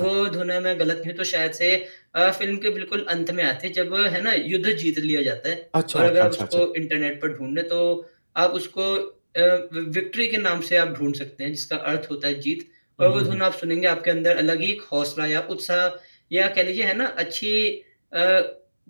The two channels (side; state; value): both; inverted; correlation -1.00